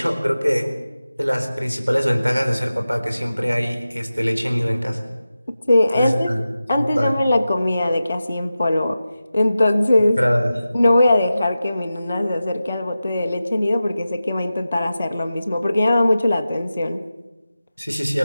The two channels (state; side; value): inverted; both; correlation -0.94